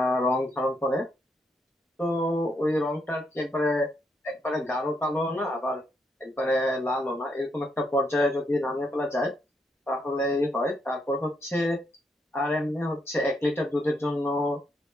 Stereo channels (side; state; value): both; normal; correlation 0.77